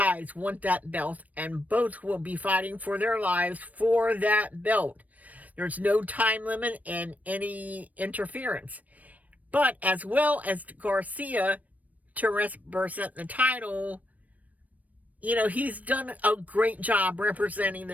want that belt, and both will be fighting for their lives for that belt. There's no time limit and any interference. But as well as Garcia to represent the title, he's done a great job representing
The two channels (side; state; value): left; late; 0.073 ms